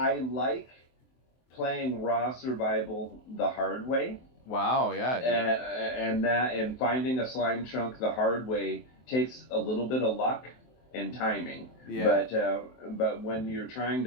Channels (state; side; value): late; right; 23 ms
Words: like playing raw survival the hard way. Wow, yeah, dude. And finding a slime chunk the hard way takes a little bit of luck and timing. Yeah. But when you're trying